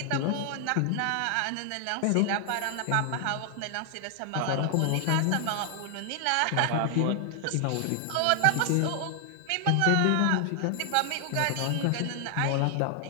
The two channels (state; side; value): different; both; correlation 0.00